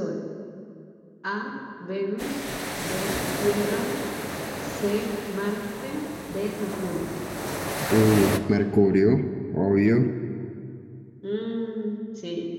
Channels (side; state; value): both; identical; correlation 1.00